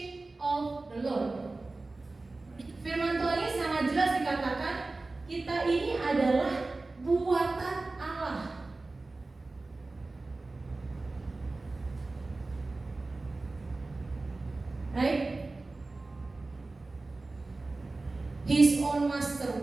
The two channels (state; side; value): quieter; left; 3.3 dB